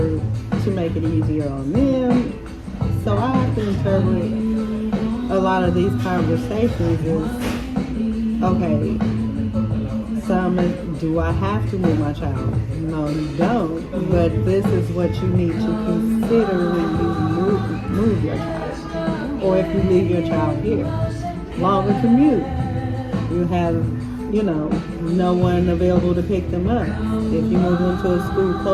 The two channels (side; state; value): both; identical; correlation 1.00